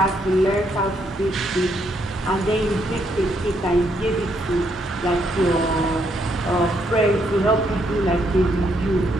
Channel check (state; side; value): normal; both; correlation 0.74